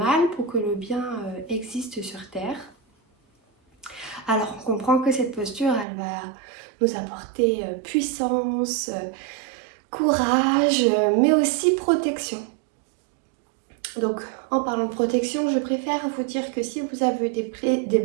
pour que le bien existe sur Terre. Alors on comprend que cette posture, elle va nous apporter puissance, courage, mais aussi protection. Donc, en parlant de protection, je préfère vous dire que si vous avez des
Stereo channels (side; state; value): left; drops out; at 5.9 s